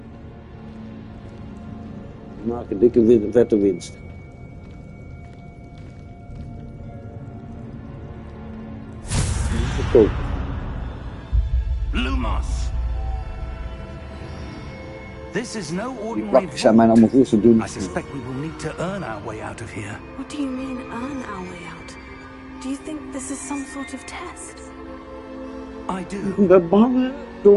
Maak een dikke vette winst. Verkoop. Lumos. This is no Die ordinary plakjes zijn mij vault. allemaal veel te dun. I suspect we will need to earn our way out of here. What do you mean, earn our way out? Do you think this is some sort of test? I do, Ik ben bang, hè?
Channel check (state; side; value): identical; both; correlation 1.00